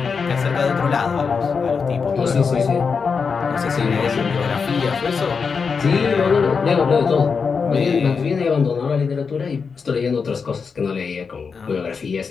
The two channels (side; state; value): right; quieter; 5.5 dB